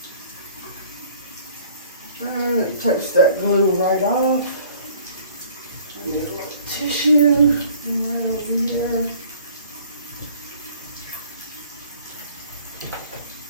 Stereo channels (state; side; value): inverted; both; correlation -0.54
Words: And it takes that glue right off. I need a little tissue right over here.